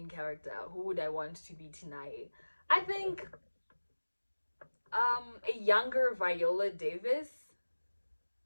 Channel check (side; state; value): both; inverted; correlation -1.00